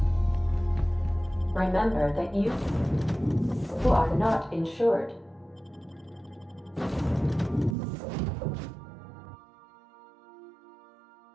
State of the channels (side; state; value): left; drops out; at 7.8 s